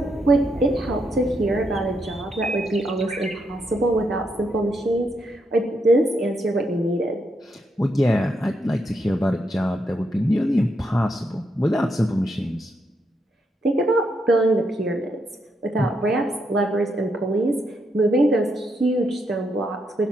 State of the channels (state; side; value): normal; both; correlation 0.79